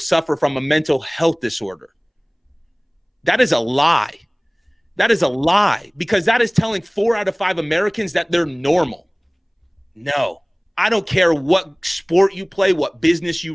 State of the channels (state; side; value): identical; both; correlation 1.00